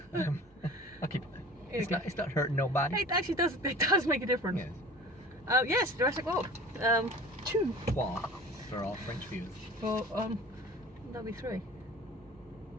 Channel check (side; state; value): both; normal; correlation 0.41